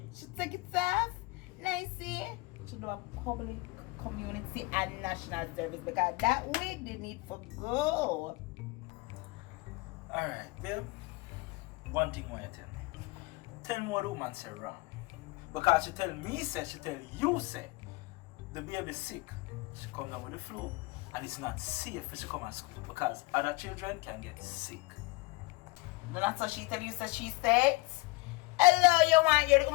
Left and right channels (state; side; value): quieter; right; 24.7 dB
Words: she take it off. Nicey. She do a public, community and national service because that wig they need for go. Alright, babe. One thing I want you to tell me. Tell me what the woman said wrong. Because she tell me say, she tell you say, the baby sick. She come down with the flu and it's not safe for she come to school because other children can get sick. That's what she tell you, so she said. Hello, you want your